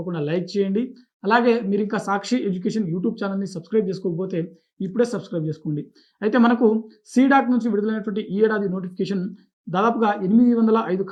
లైక్ చేయండి. అలాగే మీరింకా సాక్షి ఎడ్యుకేషన్ యూట్యూబ్ ఛానెల్‌ని సబ్స్క్రైబ్ చేసుకోకపోతే ఇప్పుడే సబ్స్క్రైబ్ చేసుకోండి. అయితే మనకు సీడాక్ నుంచి విడుదలైనటువంటి ఈ ఏడాది నోటిఫికేషన్ దాదాపుగా 805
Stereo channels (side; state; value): both; identical; correlation 1.00